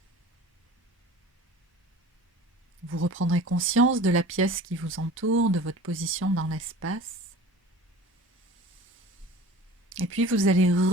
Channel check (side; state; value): both; normal; correlation 0.41